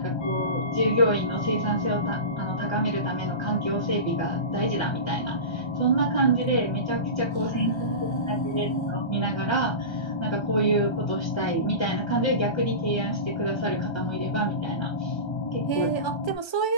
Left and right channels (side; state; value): right; late; 1.3 ms